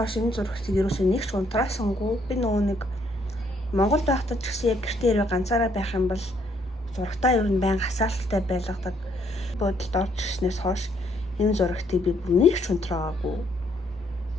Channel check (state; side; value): normal; both; correlation 0.68